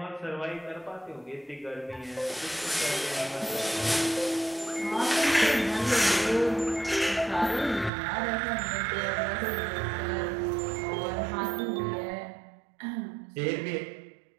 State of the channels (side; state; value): left; drops out; at 7.9 s